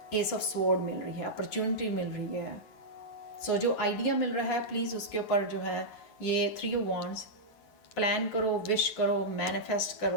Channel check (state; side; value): late; right; 9.0 ms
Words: एस ऑफ स्वॉर्ड मिल रही है, अपॉर्चुनिटी मिल रही है। सो जो आइडिया मिल रहा है प्लीज़ उसके ऊपर जो है ये 3 वॉन्ड्स प्लान करो, विश करो, मैनिफेस्ट